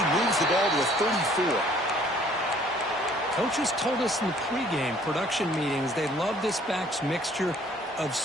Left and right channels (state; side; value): normal; both; correlation 0.58